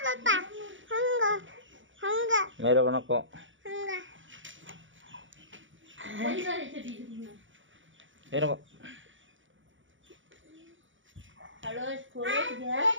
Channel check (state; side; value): late; left; 0.56 ms